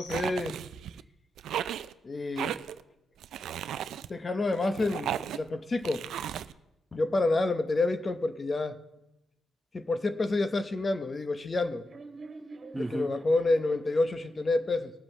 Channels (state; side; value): normal; both; correlation 0.87